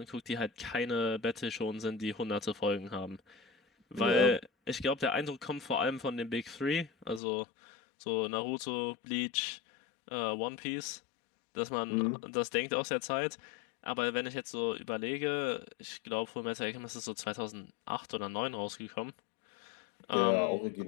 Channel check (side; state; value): right; drops out; at 7.2 s